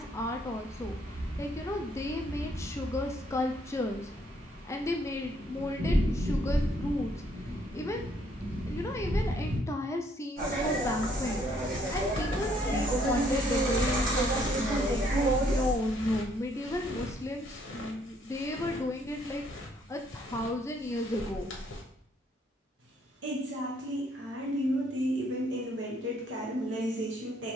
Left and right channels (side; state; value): both; normal; correlation 0.67